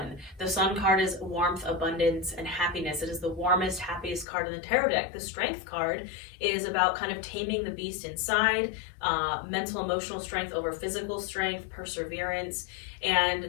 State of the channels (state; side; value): drops out; right; at 4.2 s